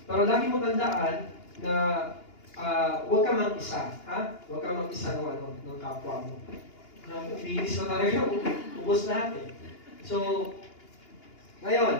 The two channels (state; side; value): late; right; 2.8 ms